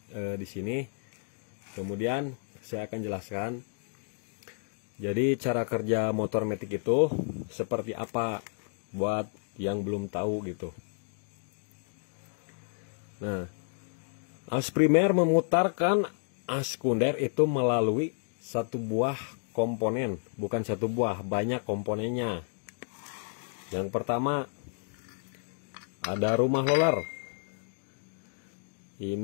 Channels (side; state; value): right; silent; digital silence